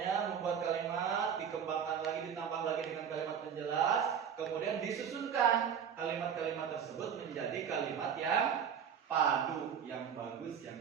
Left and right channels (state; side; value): quieter; left; 7.8 dB